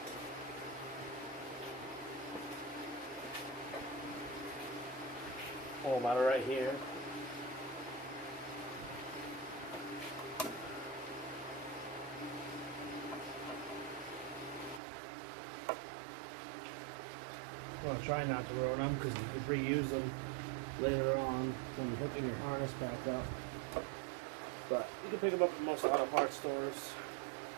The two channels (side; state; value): left; drops out; at 14.8 s